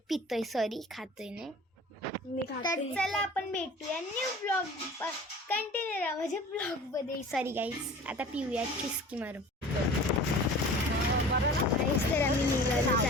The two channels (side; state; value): both; normal; correlation 0.42